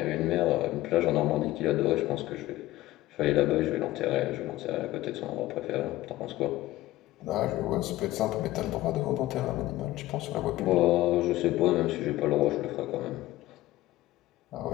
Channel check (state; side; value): quieter; right; 16.5 dB